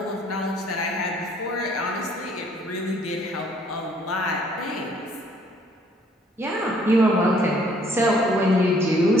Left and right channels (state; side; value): normal; both; correlation 0.62